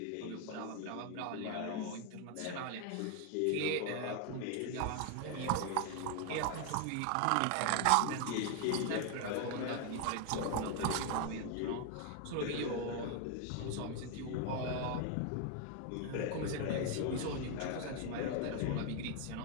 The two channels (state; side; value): different; both; correlation 0.01